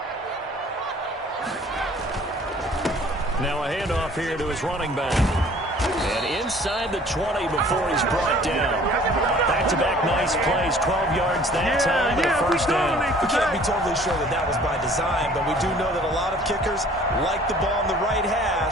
Now a handoff here to his running back. And inside the 20 before he's brought down. Back-to-back nice plays, 12 yards that time, and a first down. We can't be totally sure that that was by design, but we do know that a lot of kickers like the ball on the right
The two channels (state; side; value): normal; both; correlation 0.52